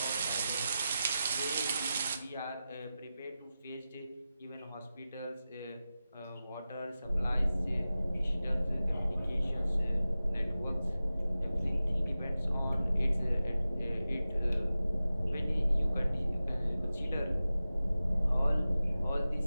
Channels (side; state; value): both; inverted; correlation -0.94